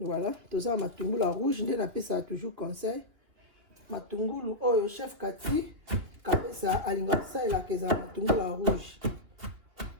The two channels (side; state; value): left; late; 3.1 ms